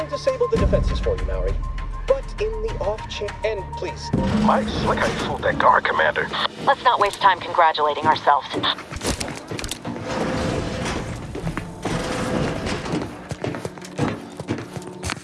disable the defenses for you, Mallory. But in the off chance, and please. Mike, slick how you fooled that guard, Commander. Let's not waste time congratulating ourselves.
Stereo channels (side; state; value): both; identical; correlation 1.00